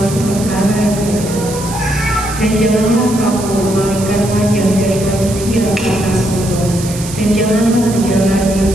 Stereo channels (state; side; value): noise; right; hiss, 11 dB below the sound